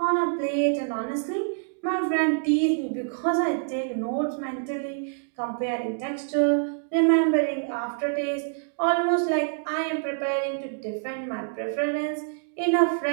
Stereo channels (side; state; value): left; silent; digital silence